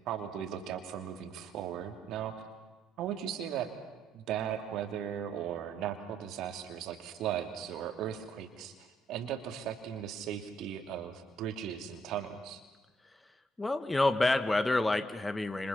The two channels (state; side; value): normal; both; correlation 0.73